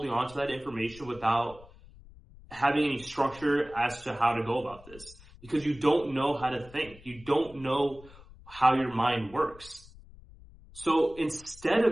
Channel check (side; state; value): left; noise; rumble, 21 dB below the sound